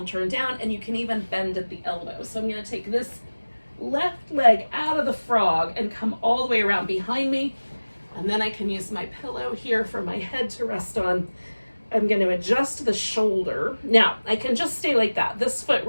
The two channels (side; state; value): both; inverted; correlation -1.00